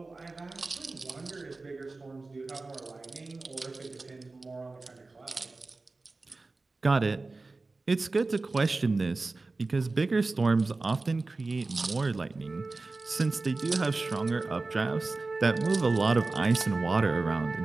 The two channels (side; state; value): left; quieter; 3.5 dB